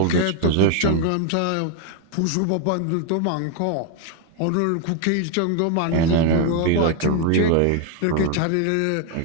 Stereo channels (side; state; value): both; different; correlation 0.01